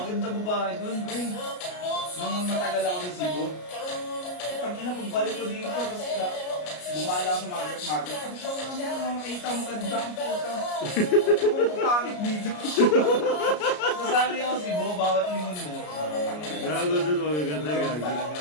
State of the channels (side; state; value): right; late; 33 ms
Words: babae doon, pre. Nung matagal ako sa Cebu, tangina, pagbalik ko dito, tapos bumala ako sa market. Sabi siya, ano, makita mo ganda ang puta. Kung pangit dito. Nasali ako Cebu, bawat lingon mo. Gago doon, magaganda, gago. Talaga.